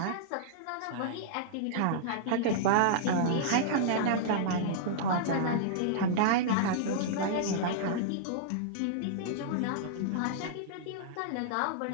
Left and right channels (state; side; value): different; both; correlation -0.02